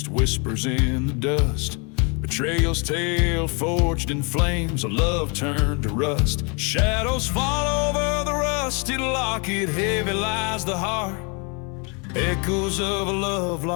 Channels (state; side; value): quieter; right; 33.6 dB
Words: whispers in the dust. Betrayal's tale forged in flames, a love turned to rust. Shadows fall over the rusted locket, heavy lies the heart. Echoes of a love